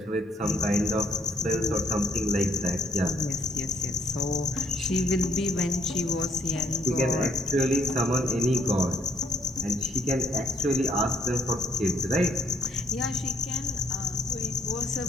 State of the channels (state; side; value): normal; both; correlation 0.67